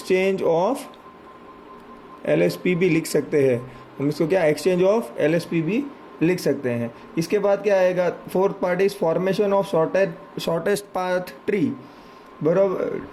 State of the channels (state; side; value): identical; both; correlation 1.00